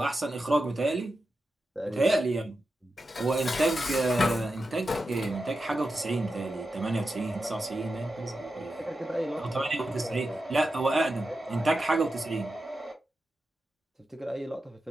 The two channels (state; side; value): normal; both; correlation 0.90